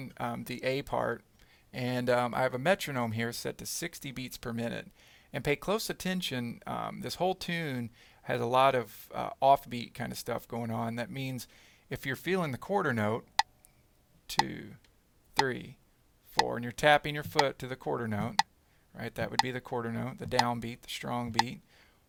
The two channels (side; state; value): both; identical; correlation 1.00